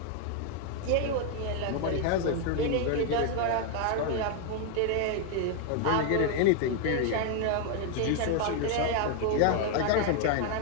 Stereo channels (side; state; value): both; different; correlation 0.00